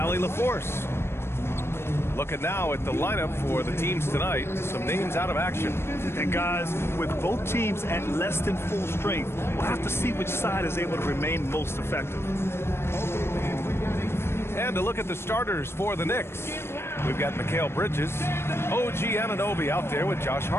LaForce. Looking now at the lineup for the teams tonight. Some names out of action. And guys, with both teams at less than full strength, we'll have to see which side is able to remain most effective. And to look at the starters for the Knicks. We've got Mikal Bridges, OG Anunoby out there with Josh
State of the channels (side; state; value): right; late; 0.12 ms